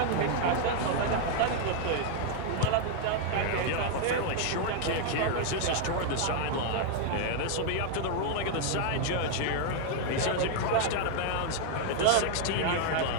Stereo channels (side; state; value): both; different; correlation 0.00